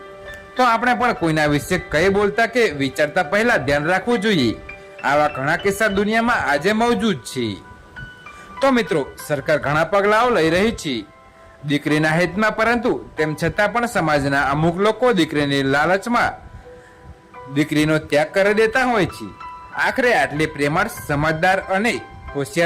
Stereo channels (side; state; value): both; identical; correlation 1.00